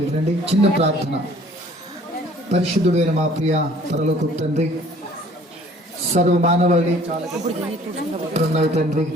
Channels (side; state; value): both; normal; correlation 0.54